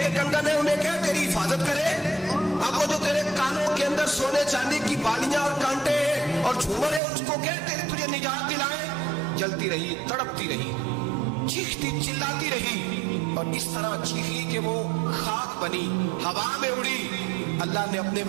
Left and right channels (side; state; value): left; drops out; at 7.0 s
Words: कंगन है उन्हें क्या तेरी हिफाजत करे, अब वो जो तेरे कानों के अंदर सोने चांदी की बालियां और कांटे और झूमर है उसको क्या तेरी तुझे निजात दिलाए। जलती रही, तड़पती रही, चीखती चिल्लाती रही और इस तरह चीखी कि वो खाक बनी, हवा में उड़ी। अल्लाह ने अपने